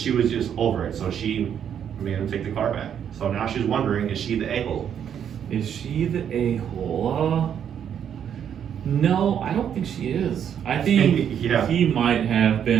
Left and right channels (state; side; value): quieter; left; 8.8 dB